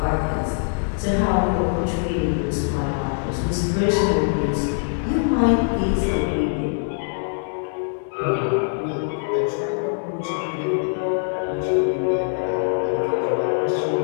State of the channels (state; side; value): silent; right; digital silence